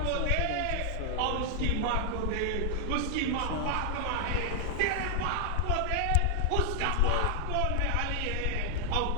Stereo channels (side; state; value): both; different; correlation 0.00